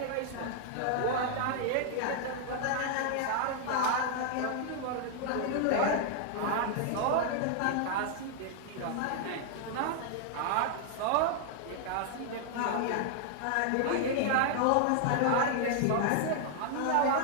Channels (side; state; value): both; different; correlation 0.00